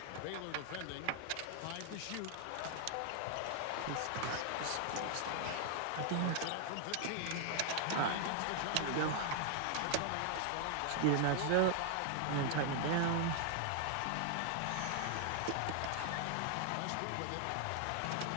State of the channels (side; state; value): both; different; correlation 0.00